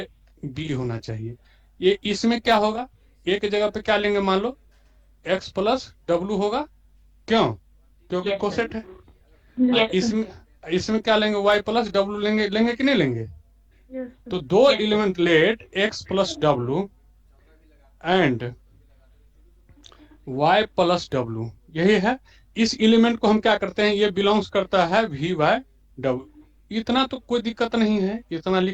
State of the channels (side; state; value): both; identical; correlation 1.00